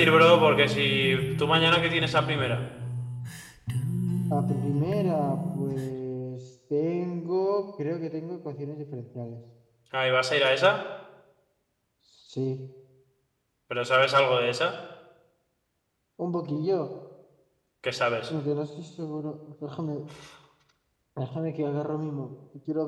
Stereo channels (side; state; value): both; identical; correlation 1.00